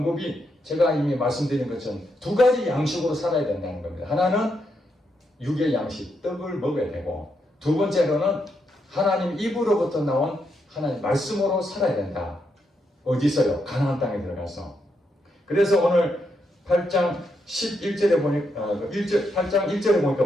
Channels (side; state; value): both; normal; correlation 0.80